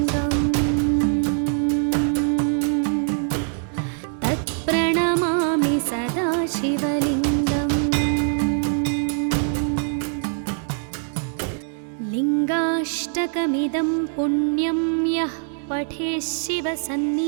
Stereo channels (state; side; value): silent; left; 63 dB below the other